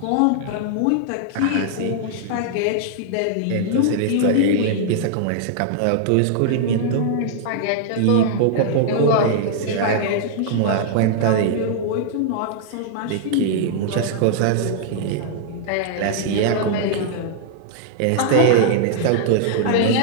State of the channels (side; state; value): both; different; correlation -0.01